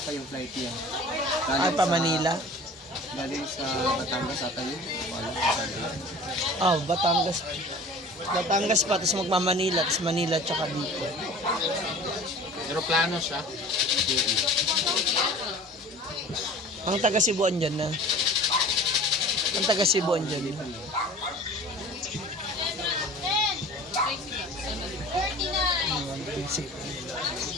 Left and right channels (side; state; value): both; normal; correlation 0.42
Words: pa yung flight niya. Ay, pa Manila? Galing sa Batangas ata yun. Wala sa Oh, Batangas. Batangas pa, tapos magma-Manila, tapos Manila tsaka dito. Aeroplano siya. Ang taga Cebuan dyan na. Ang taga Cebuan dyan.